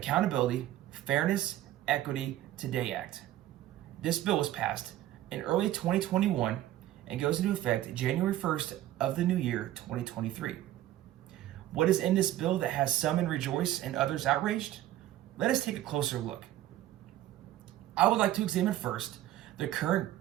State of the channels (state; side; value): quieter; left; 13.7 dB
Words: Fairness, Equity Today Act. This bill was passed in early 2021 and goes into effect January 1st of the new year 2023. What is in this bill that has some in rejoice and others outraged? Let us take a closer look. I would like to examine first the current